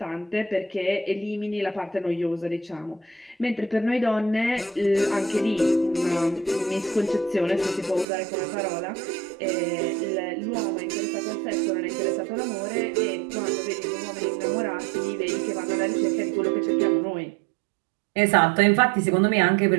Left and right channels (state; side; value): drops out; left; at 8.1 s